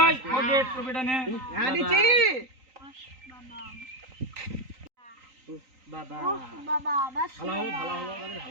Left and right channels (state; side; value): late; left; 3.9 ms